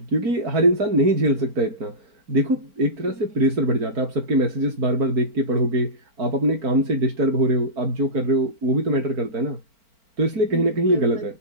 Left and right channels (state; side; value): late; left; 4.4 ms